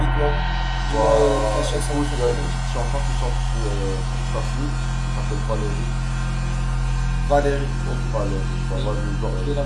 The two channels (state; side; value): identical; both; correlation 1.00